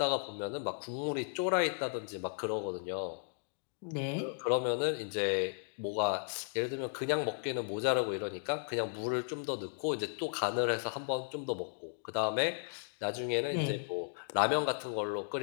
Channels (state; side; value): silent; right; digital silence